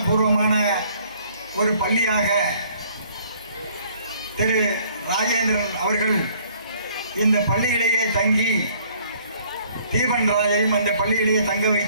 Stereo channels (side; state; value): both; inverted; correlation -0.60